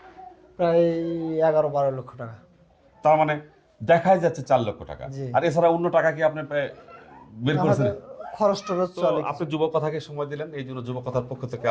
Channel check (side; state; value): both; identical; correlation 1.00